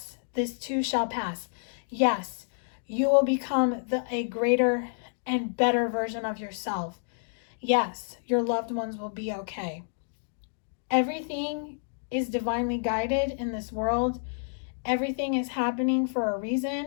this too shall pass. Yes, you will become a greater and better version of yourself. Yes, your loved ones will be okay. Everything is divinely guided in this world. Everything is happening for a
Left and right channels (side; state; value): right; silent; digital silence